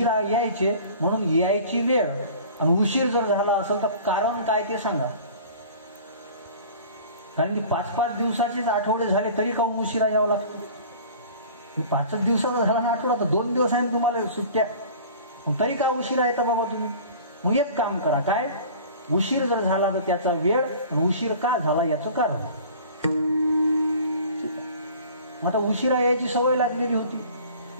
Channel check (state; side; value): inverted; both; correlation -0.44